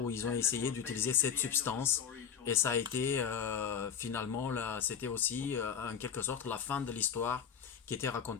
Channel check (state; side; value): quieter; right; 7.7 dB